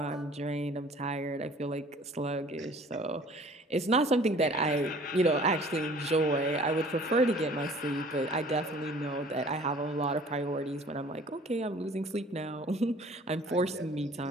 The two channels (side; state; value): both; normal; correlation 0.50